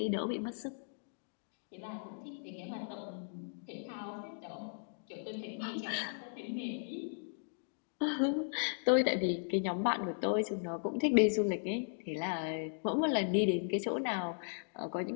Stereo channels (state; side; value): silent; right; digital silence